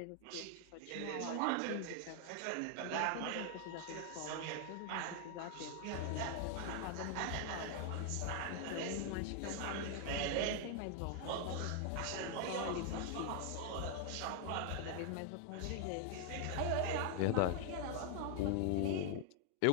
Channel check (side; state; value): both; different; correlation 0.00